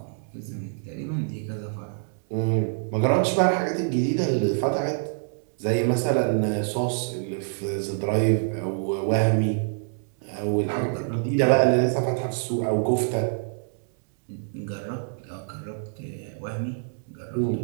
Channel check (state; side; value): silent; left; digital silence